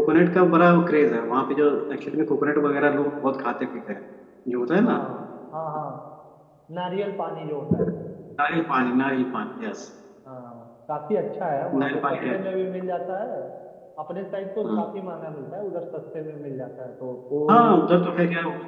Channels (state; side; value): identical; both; correlation 1.00